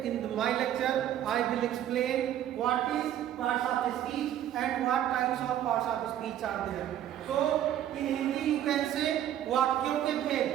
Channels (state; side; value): quieter; left; 11.4 dB